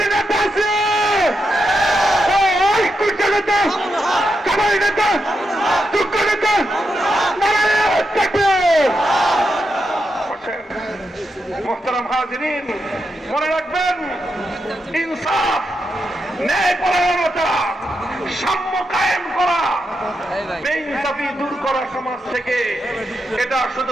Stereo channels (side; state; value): both; normal; correlation 0.85